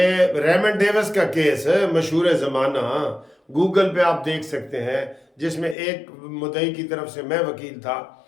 ریمنڈ ڈیوس کا کیس ہے، مشہور زمانہ، گوگل پہ آپ دیکھ سکتے ہیں، جس میں ایک مدعی کی طرف سے میں وکیل تھا،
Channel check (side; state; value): right; drops out; at 5.8 s